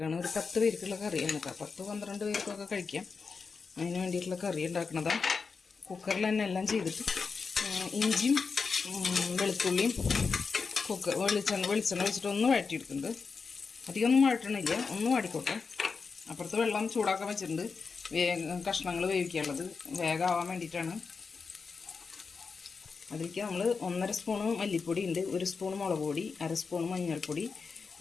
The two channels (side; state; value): right; quieter; 5.0 dB